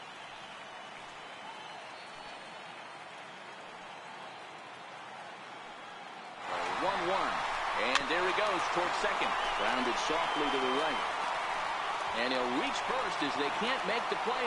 And there he goes towards second. Grounded softly to the right. And he'll reach first as they can't make the play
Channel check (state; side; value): identical; both; correlation 1.00